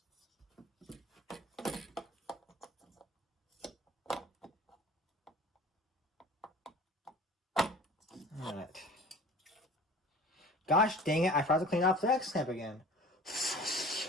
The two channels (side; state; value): both; normal; correlation 0.43